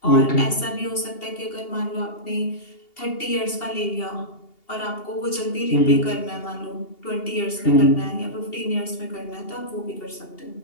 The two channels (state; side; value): late; right; 2.8 ms